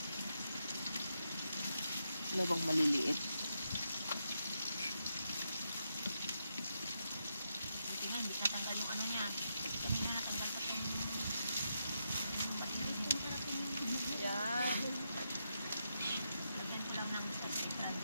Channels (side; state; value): both; inverted; correlation -0.84